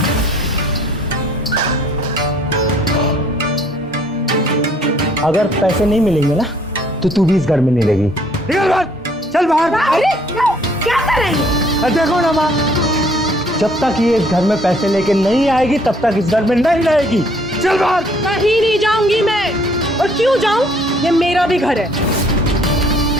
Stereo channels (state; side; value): normal; both; correlation 0.61